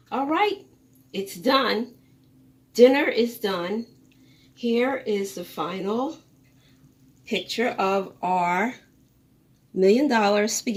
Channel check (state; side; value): identical; both; correlation 1.00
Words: All right, it's done. Dinner is done. Here is the final picture of our $1 million